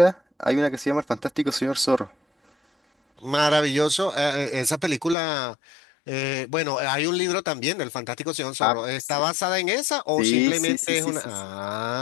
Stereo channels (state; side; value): drops out; right; at 5.2 s